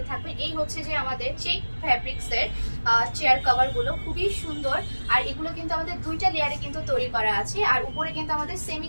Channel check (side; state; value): both; inverted; correlation -1.00